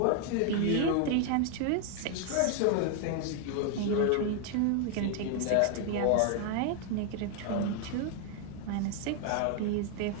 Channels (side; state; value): both; different; correlation 0.00